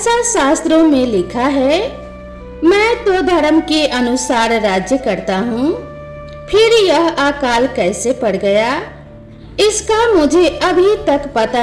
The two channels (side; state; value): both; identical; correlation 1.00